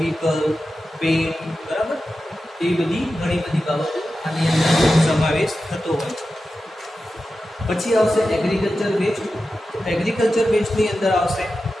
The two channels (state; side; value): normal; both; correlation 0.92